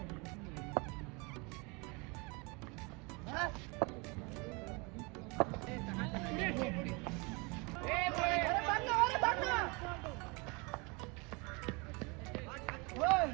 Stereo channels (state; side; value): quieter; left; 28.9 dB